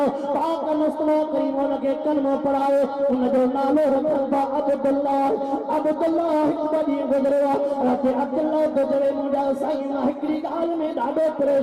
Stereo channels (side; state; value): both; identical; correlation 1.00